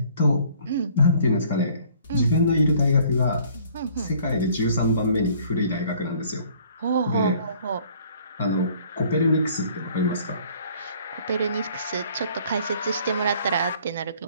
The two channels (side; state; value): both; inverted; correlation -0.57